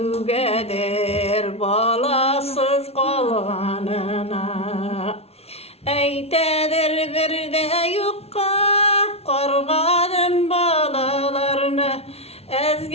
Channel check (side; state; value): right; late; 0.30 ms